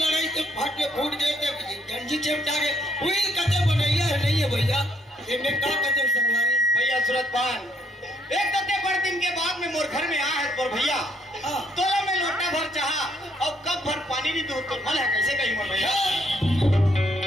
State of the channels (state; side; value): normal; both; correlation 0.70